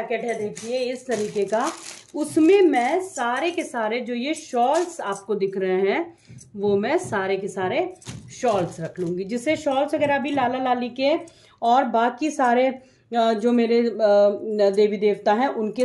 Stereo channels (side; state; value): both; identical; correlation 1.00